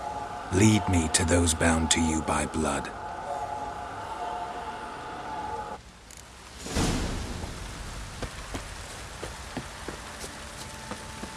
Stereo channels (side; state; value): both; identical; correlation 1.00